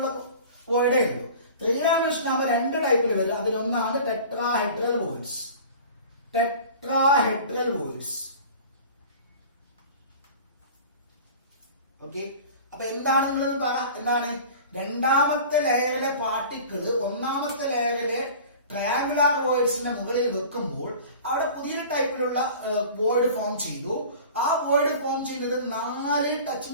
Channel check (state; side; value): inverted; both; correlation -0.41